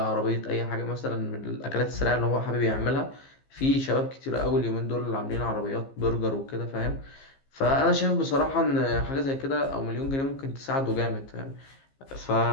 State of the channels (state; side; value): late; right; 15 ms